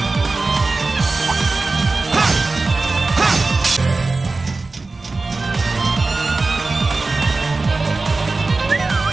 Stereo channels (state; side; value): quieter; left; 3.6 dB